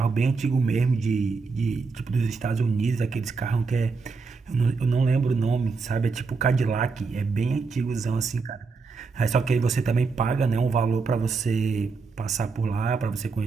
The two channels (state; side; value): quieter; left; 4.6 dB